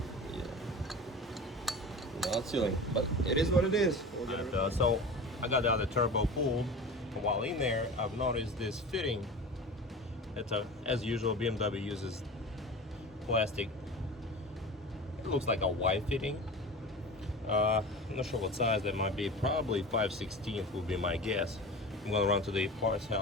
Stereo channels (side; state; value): both; normal; correlation 0.33